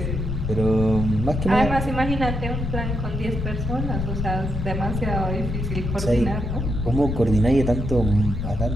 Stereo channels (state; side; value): noise; left; rumble, 3 dB below the sound